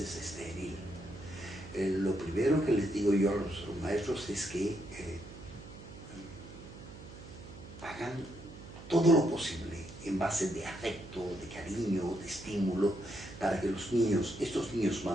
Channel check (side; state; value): right; noise; hum, 15 dB below the sound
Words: estéril. Lo primero que les digo yo a los maestros es que hagan todo lo posible en base de afecto, de cariño, de estímulo, para que los niños, estos niños